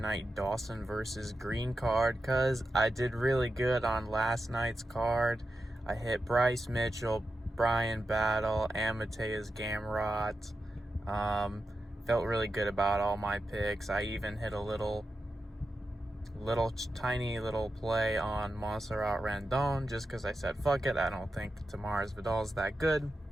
Dawson versus Green card, because I did really good on last night's card. I hit Bryce Mitchell, Brian Battle, and Mateus Gamrot. Felt really good about all my picks. I even hit a tiny little play on Montserrat Randon, just because I said, fuck it, I don't think Tamara's Vidal's that good.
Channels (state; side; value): normal; both; correlation 0.90